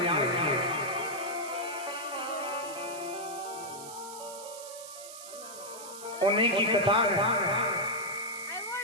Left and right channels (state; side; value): noise; right; hiss, 13 dB below the sound